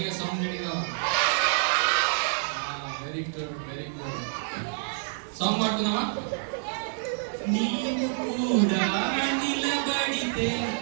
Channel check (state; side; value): silent; left; 60 dB below the other